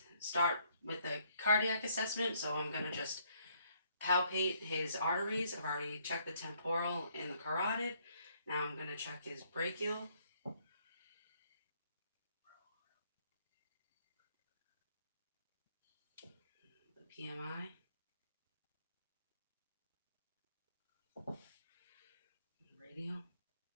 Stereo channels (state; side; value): inverted; both; correlation -0.67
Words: start with a cardiac assessment. So I'm going to just palpate his arteries. I've already checked the temporal and the carotid. Now I'm going to check his brachial. The PMI. Radial.